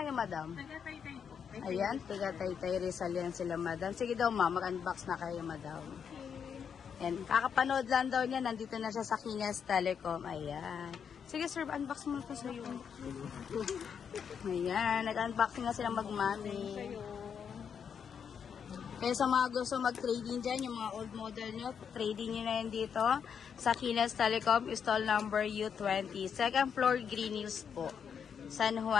madam? Taga-Taytay po. Ayan, tiga Taytay Rizal yan sila madam. Sige daw ma'am, mag-unbox na kayo madam. Ayan, kakapanood lang daw niya. Nandito na siya sa Ginas Telecom. Ayan. Sige sir, unbox mo ito sa'yo. Ayan, nag-unboxing na sila mag-mami. Kaya sa mga gusto mag-trading dyan, yung mga old model nyo, trading nyo na yan dito sa Ginas Telecom, stall number U20. Second floor, Green Hills po. San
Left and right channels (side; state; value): right; quieter; 7.2 dB